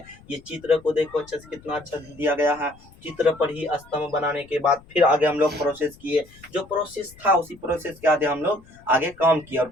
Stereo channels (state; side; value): noise; left; rumble, 24 dB below the sound